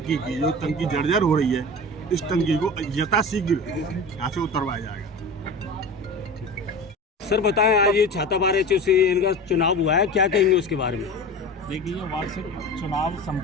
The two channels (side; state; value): both; normal; correlation 0.32